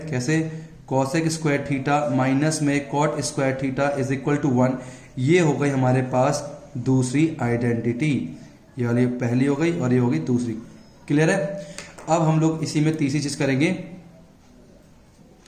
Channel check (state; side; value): identical; both; correlation 1.00